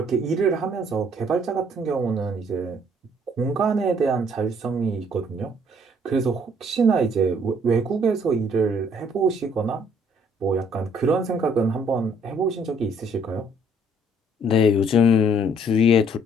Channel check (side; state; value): both; normal; correlation 0.63